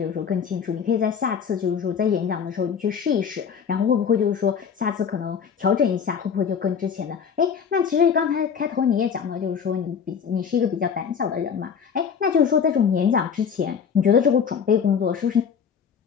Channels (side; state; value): right; quieter; 7.0 dB